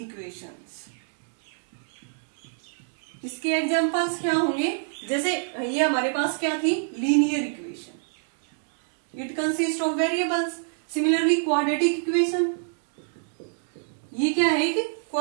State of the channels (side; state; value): left; silent; digital silence